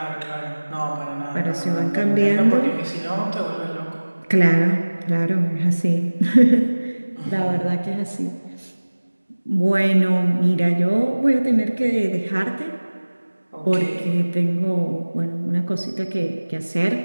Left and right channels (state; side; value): inverted; both; correlation -1.00